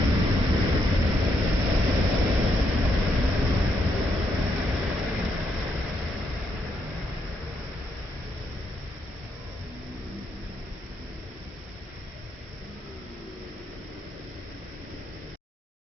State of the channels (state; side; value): normal; both; correlation 0.78